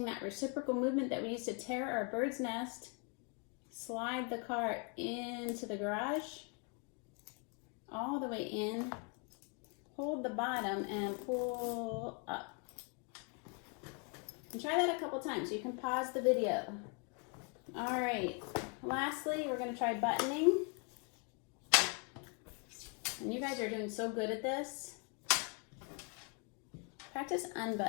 that reciprocal movement that we used to tear our bird's nest, slide the car into the garage, all the way in, hold the bottom and pull up. And try that a couple times. You can pause the video. All right, lastly, we're going to try buttoning. And you guys are doing so good at this. Practice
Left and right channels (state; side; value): quieter; right; 34.2 dB